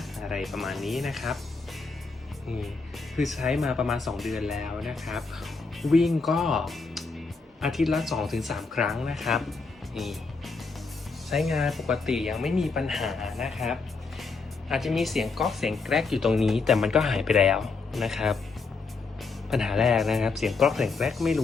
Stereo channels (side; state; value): right; quieter; 4.3 dB